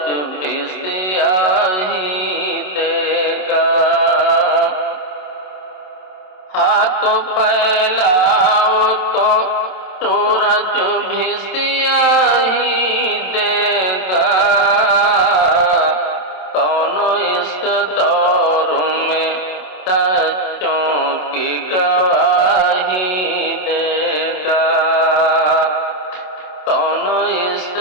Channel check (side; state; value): right; late; 27 ms